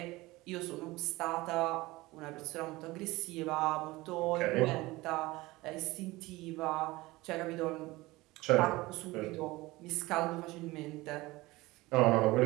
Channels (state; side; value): quieter; left; 20.3 dB